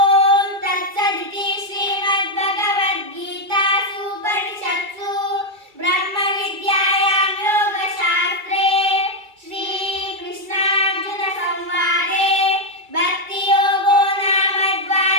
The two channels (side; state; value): left; late; 2.3 ms